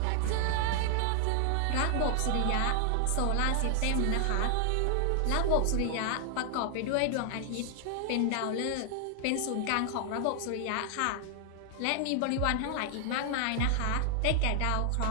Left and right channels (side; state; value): both; different; correlation 0.00